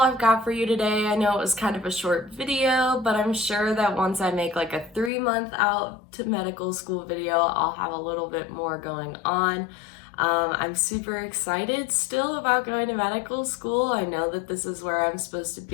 I've got for you today. I know it was kind of a short video, but I'm sure that once I make like a 3-month out to medical school video, I'll have a little bit more going on. I'm super excited still about going to medical school. I know that this is where I'm supposed to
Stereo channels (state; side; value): drops out; right; at 5.1 s